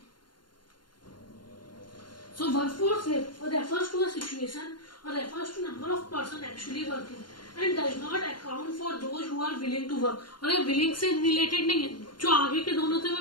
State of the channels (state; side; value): late; right; 0.71 ms